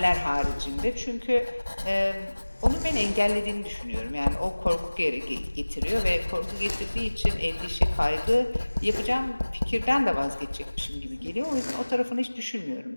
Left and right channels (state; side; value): inverted; both; correlation -1.00